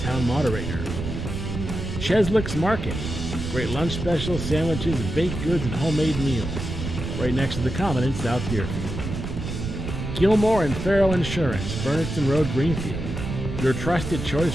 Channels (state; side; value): noise; right; rumble, 5 dB below the sound